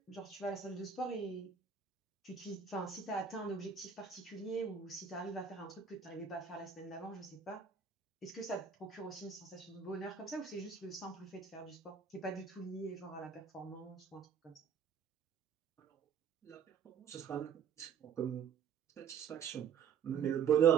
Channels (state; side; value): quieter; left; 7.0 dB